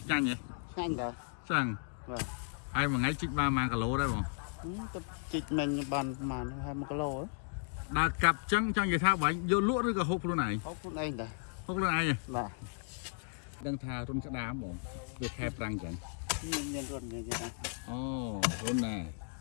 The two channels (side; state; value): right; silent; 54 dB below the other